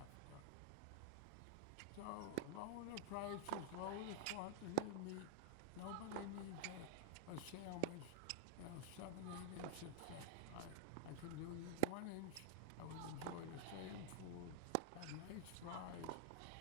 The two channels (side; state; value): both; different; correlation -0.01